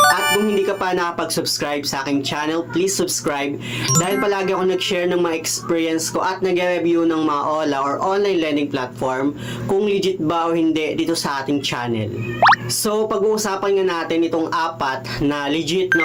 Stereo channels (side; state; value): both; identical; correlation 1.00